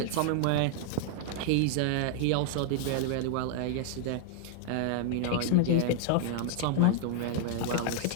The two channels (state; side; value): different; both; correlation 0.00